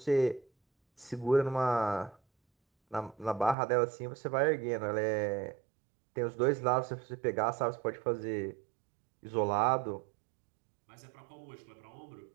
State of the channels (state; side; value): drops out; left; at 3.6 s